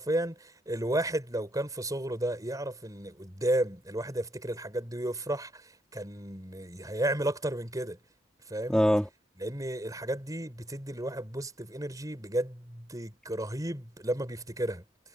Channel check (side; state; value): both; normal; correlation 0.77